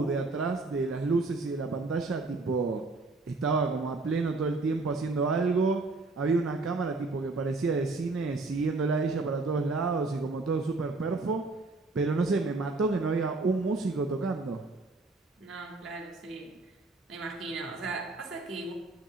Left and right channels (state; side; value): quieter; left; 3.5 dB